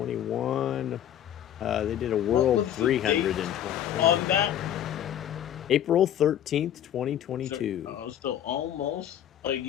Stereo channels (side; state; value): right; quieter; 10.7 dB